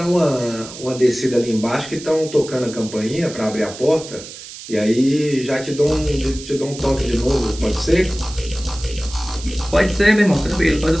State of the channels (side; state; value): right; noise; hiss, 14 dB below the sound